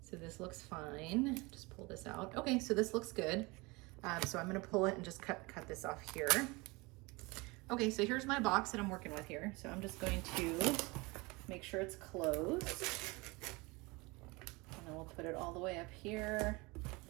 So this looks fine. Just pull this out. Okay, so this looks good. So I'm gonna pull it and just cut this off here. Okay, so here's my box that I'm working with here. So I'm just going to make sure it's closed. And then we'll put it all the way up here.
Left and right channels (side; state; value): left; quieter; 25.2 dB